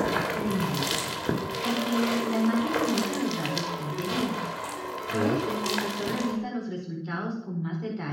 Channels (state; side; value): identical; both; correlation 1.00